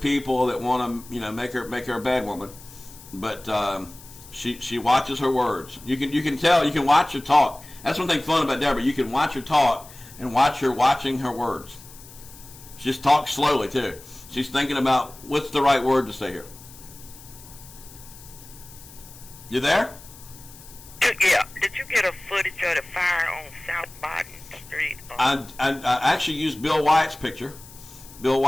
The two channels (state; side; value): noise; left; hiss, 19 dB below the sound